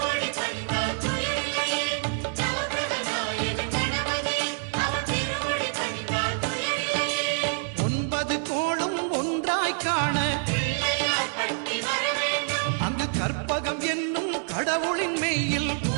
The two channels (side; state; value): left; silent; 55 dB below the other